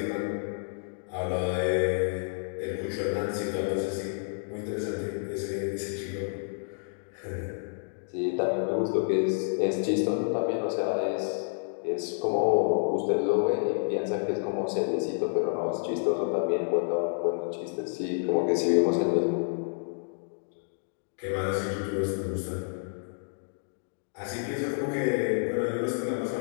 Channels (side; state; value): right; silent; digital silence